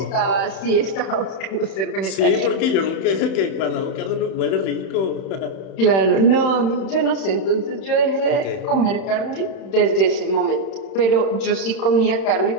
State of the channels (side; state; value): right; late; 31 ms